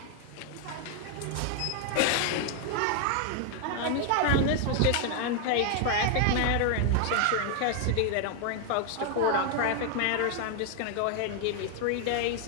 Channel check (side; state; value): both; different; correlation 0.00